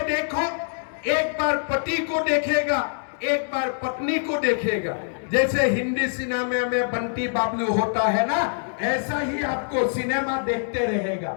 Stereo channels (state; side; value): silent; right; digital silence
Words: देखो, एक बार पति को देखेगा, एक बार पत्नी को देखेगा। जैसे हिंदी सिनेमा में बंटी बाबलू होता है ना, ऐसा ही आपको सिनेमा देखते रहेगा।